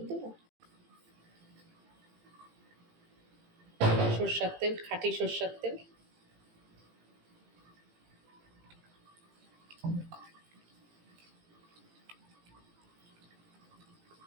দেবো, সর্ষার তেল, খাঁটি সর্ষার তেল।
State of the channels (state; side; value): late; left; 18 ms